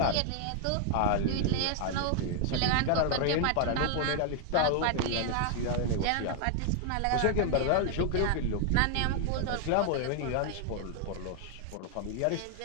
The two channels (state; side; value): different; both; correlation 0.00